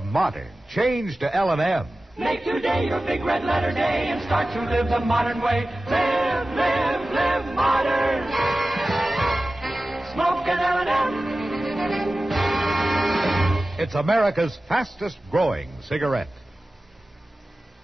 modern, change to L&M. Make today your big red letter day and start to live the modern way. Live, live, live modern. Smoke an L&M. It's America's fastest growing cigarette.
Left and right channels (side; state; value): both; normal; correlation 0.96